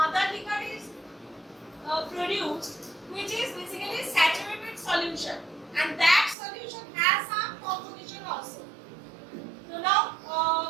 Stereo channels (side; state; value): left; drops out; at 6.4 s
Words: liquor is produced, which is basically saturated solution, and that solution has some composition also. So now